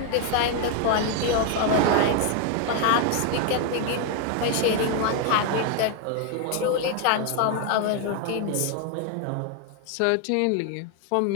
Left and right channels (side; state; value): both; different; correlation 0.00